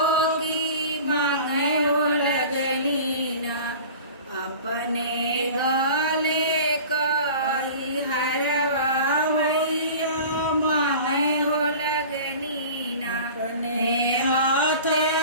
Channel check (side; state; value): both; inverted; correlation -0.40